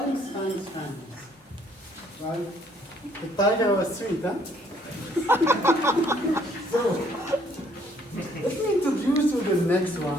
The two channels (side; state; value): both; normal; correlation 0.64